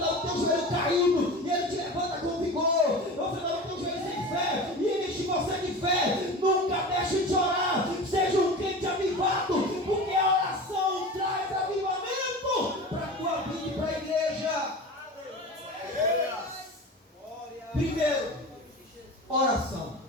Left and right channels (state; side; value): normal; both; correlation 0.32